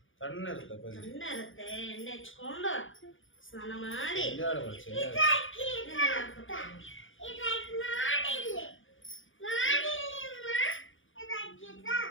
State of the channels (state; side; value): late; right; 0.57 ms